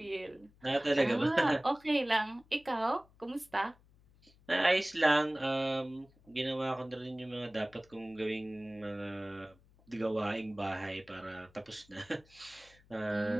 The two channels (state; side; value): noise; left; hum, 29 dB below the sound